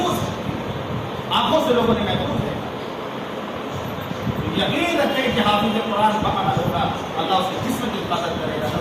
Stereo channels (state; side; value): identical; both; correlation 1.00